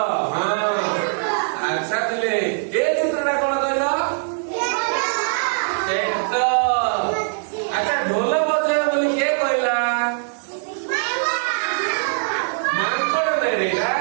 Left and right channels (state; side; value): silent; left; 65 dB below the other